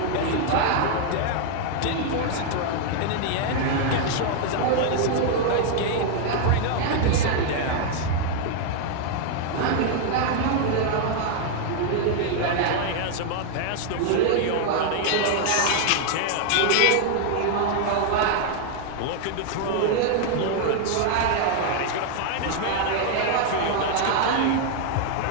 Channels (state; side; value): different; both; correlation 0.00